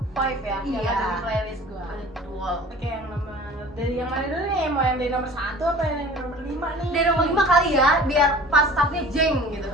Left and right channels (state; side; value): normal; both; correlation 0.44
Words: 5 ya yang Iya. ada di playlist gua. Betul. Oke, yang nomor dari yang mana dulu nih? Mau yang dari nomor 1 apa yang nomor 5 nih? Dari nomor 5 kali ya, biar pas startnya jeng gitu.